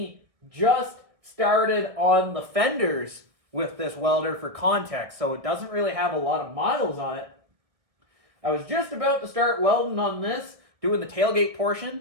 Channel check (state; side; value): late; left; 1.6 ms